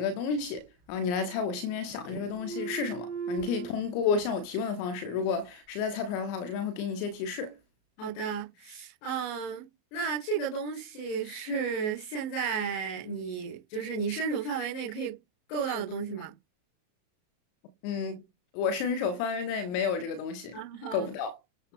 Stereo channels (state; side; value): late; right; 34 ms